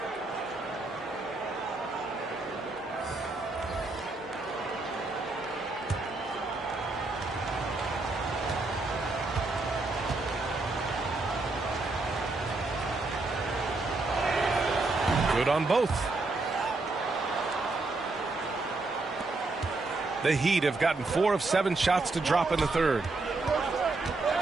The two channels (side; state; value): left; quieter; 3.4 dB